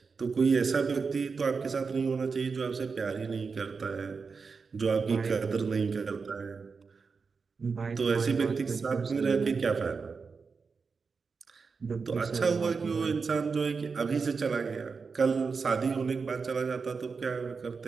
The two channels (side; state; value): left; quieter; 5.0 dB